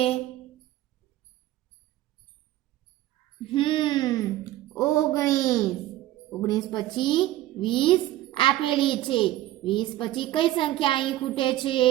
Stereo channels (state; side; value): quieter; left; 15.1 dB